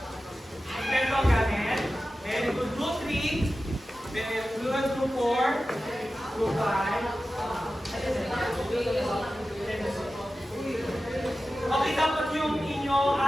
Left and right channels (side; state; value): both; normal; correlation 0.94